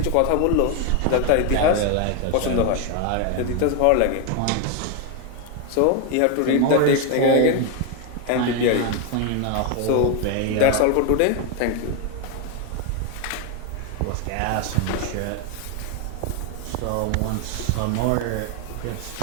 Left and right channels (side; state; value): both; different; correlation 0.01